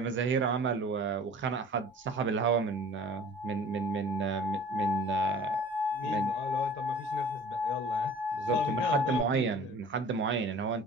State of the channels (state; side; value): normal; both; correlation 0.46